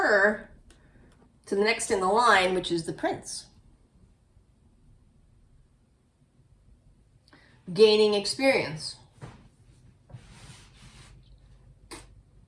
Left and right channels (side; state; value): both; identical; correlation 1.00